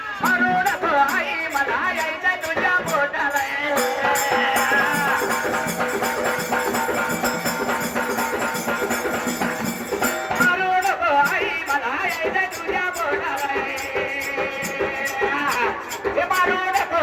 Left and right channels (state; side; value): identical; both; correlation 1.00